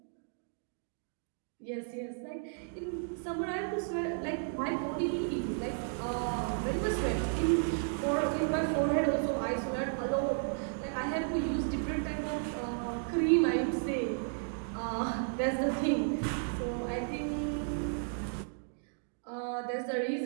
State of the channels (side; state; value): left; silent; digital silence